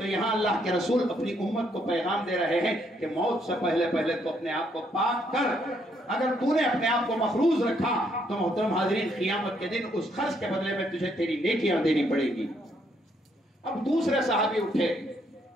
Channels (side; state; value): both; normal; correlation 0.72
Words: یہاں اللہ کے رسول اپنی امت کو پیغام دے رہے ہیں کہ موت سے پہلے تو اپنے آپ کو پاک کر، اگر تو نے اپنے آپ کو مخروض رکھا تو محترم حاضرین قیامت کے دن اس قرض کے بدلے میں تجھے تیری نیکیاں دینی پڑے گی۔ اب دوسرے صحابی اٹھے،